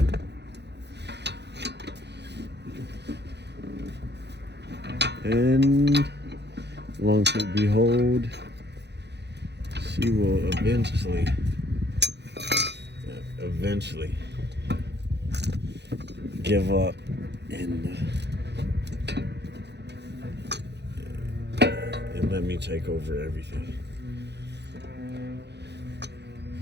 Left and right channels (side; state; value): left; late; 0.50 ms